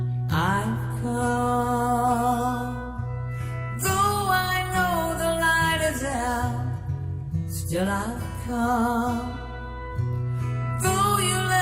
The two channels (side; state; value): both; identical; correlation 1.00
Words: I've come, though I know the light is out, still I've come. Though you